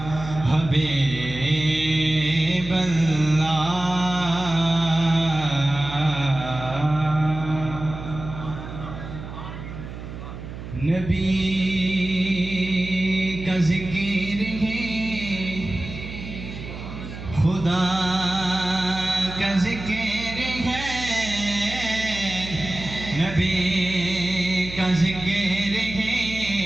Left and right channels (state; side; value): noise; right; hum, 10 dB below the sound